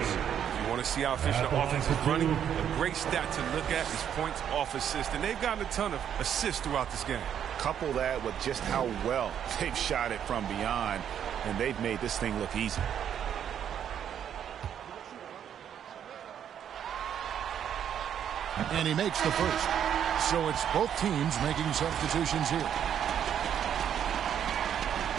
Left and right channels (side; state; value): left; quieter; 9.2 dB